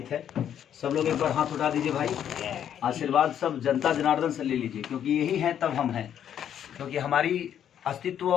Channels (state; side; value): quieter; right; 9.6 dB